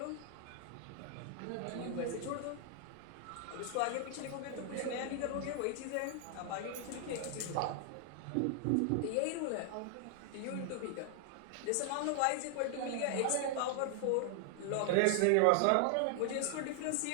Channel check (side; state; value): both; different; correlation 0.00